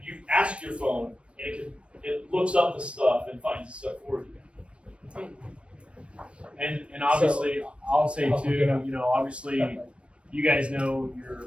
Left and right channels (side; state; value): left; late; 0.060 ms